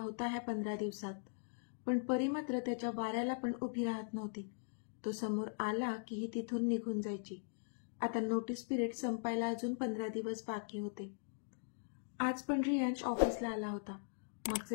होता ह्या 15 दिवसात, पण परी मात्र त्याच्या वाऱ्याला पण उभी राहत नव्हती. तो समोर आला की ही तिथून निघून जायची. आता नोटीस पिरियड संपायला अजून 15 दिवस बाकी होते. आज पण रियांश ऑफिसला आला होता.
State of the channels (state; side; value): silent; right; digital silence